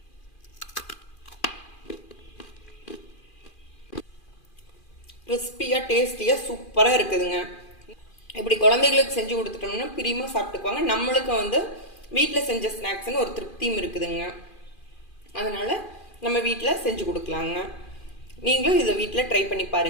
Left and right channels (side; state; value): right; late; 2.4 ms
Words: கிறிஸ்பியாக டேஸ்டியாக சூப்பராக இருக்குதுங்க. இப்படி குழந்தைகளுக்கு செஞ்சு கொடுத்துட்டோம்னா பிரியமாக சாப்பிட்டுக்குவாங்க. நம்மளுக்கும் வந்து வீட்டில் செஞ்ச ஸ்நாக்ஸ்ன்னு ஒரு திருப்தியும் இருக்குதுங்க. அதனால் நம்ம வீட்டில் செஞ்சு கொடுக்கலாங்க. நீங்களும் இதை வீட்டில் ட்ரை பண்ணி